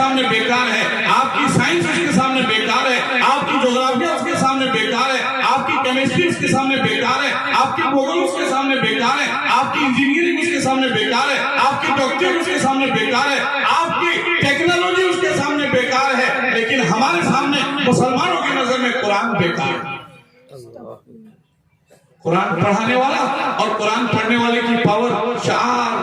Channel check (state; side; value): identical; both; correlation 1.00